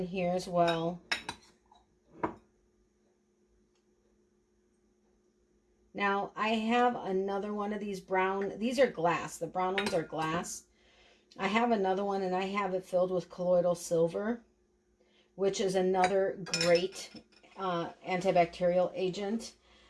here as well. Now, I have another one of these brown. These are glass. The brown ones are glass. I have another one, and I have it filled with colloidal silver, which is another great antibacterial agent.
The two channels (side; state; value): both; identical; correlation 1.00